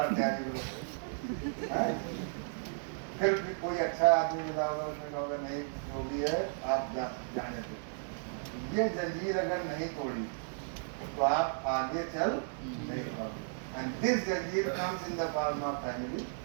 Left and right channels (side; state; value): left; silent; 55 dB below the other